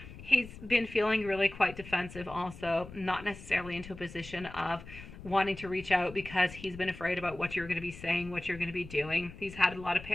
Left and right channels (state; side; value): noise; left; rumble, 15 dB below the sound